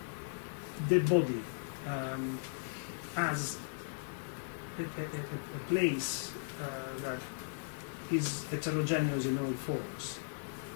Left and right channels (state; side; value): silent; right; 53 dB below the other